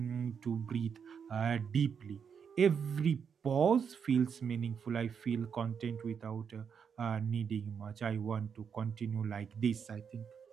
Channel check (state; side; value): quieter; left; 6.9 dB